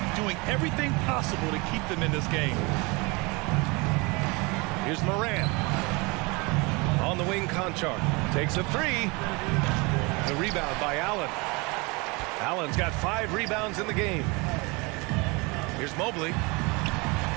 doing everything possible to keep them in this game. Here's Morant. On the wing, Conchar takes a 3. The rebound by Allen. Allen's got 5 rebounds in the game. Here's Mobley.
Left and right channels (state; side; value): quieter; left; 27.1 dB